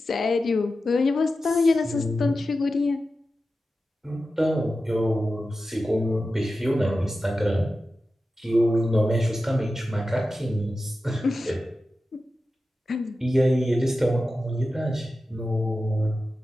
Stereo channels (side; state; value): both; normal; correlation 0.92